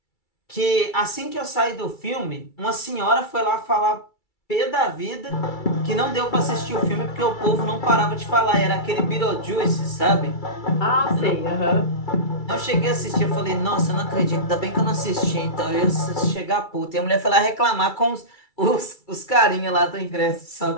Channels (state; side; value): late; right; 2.3 ms